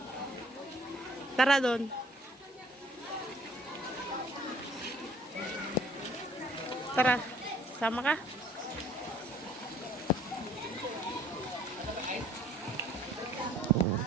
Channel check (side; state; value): both; normal; correlation 0.57